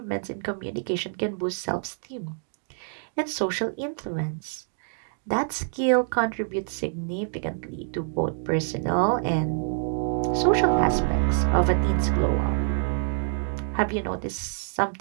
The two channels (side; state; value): left; silent; digital silence